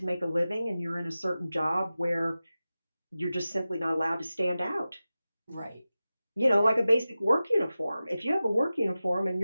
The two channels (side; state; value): both; inverted; correlation -0.95